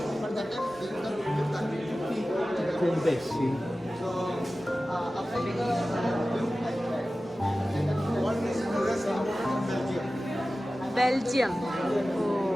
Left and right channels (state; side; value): normal; both; correlation 0.95